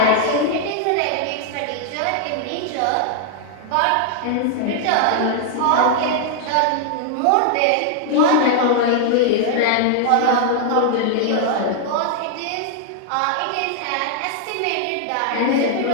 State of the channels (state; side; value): different; both; correlation -0.01